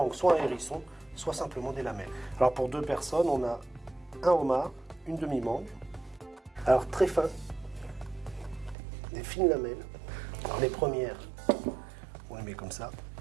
soit un hérisson, soit simplement des lamelles. Alors, pour 2 personnes, on a un homard, une demi-mangue. Alors, très fin, des fines lamelles. Alors, les premières, on les met comme ça.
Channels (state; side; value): drops out; left; at 8.8 s